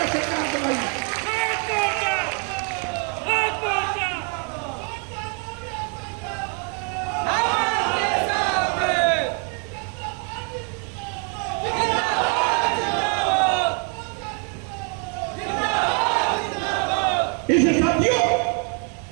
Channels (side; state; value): left; quieter; 38.5 dB